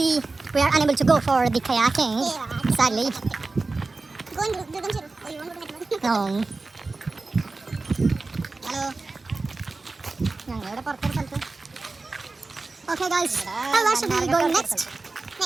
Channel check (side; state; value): left; quieter; 3.6 dB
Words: we are unable to go for the kayaking. Yeah. Sadly. Go and do them. Oh, you want to go to no. Hello. Okay, guys. Now where should we go next?